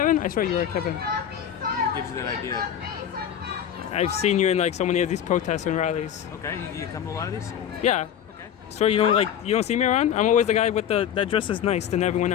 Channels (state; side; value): quieter; right; 9.5 dB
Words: I swear you were Kevin. What gives you that idea? I've seen you in like so many of these protests and rallies. Okay, you come to a lot of these? Yeah. Okay. So you don't see me around? I'm always the guy with that dresses nice than everyone